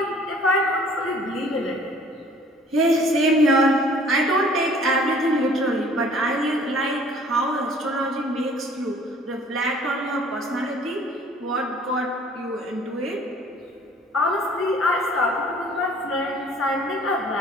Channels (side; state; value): both; normal; correlation 0.54